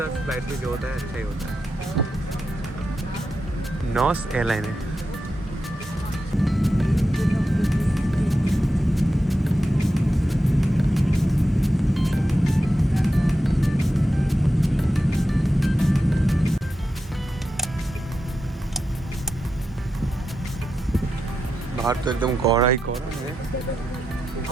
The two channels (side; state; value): both; normal; correlation 0.88